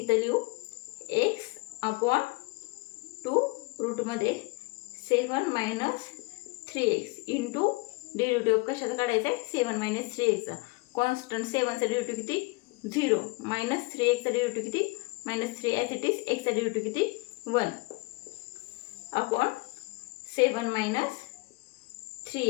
लिहू x अपॉन 2 रूटमध्ये 7 मायनस 3x इंटू डेरिव्हेटिव्ह कशाचा काढायचा आहे, 7 मायनस 3xचा. कॉन्स्टंट 7चा डेरिव्हेटिव्ह किती 0, मायनस 3xचा डेरिव्हेटिव्ह किती मायनस 3 ॲज इट इज, xचा डेरिव्हेटिव्ह किती 1 upon 7 minus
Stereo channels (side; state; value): right; quieter; 25.9 dB